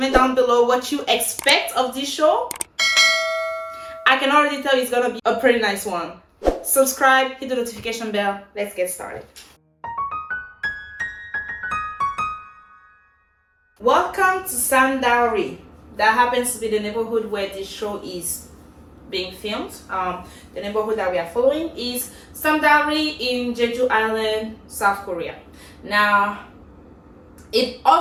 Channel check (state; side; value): identical; both; correlation 1.00